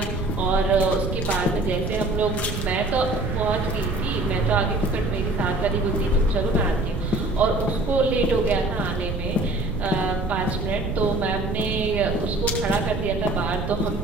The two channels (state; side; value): noise; right; rumble, 5 dB below the sound